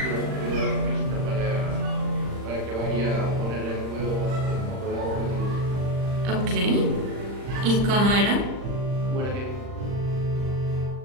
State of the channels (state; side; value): late; left; 39 ms